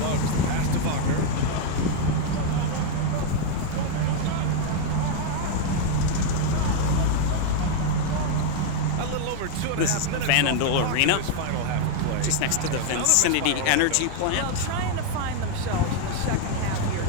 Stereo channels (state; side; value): different; both; correlation 0.00